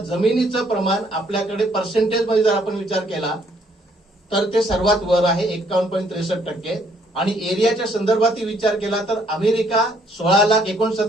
प्रमाण आपल्याकडे पर्सेंटेज मध्ये जर आपण विचार केला तर ते सर्वात वर आहे 51.63% आणि एरियाच्या संदर्भात विचार केला तर अमेरिका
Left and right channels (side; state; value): both; normal; correlation 0.66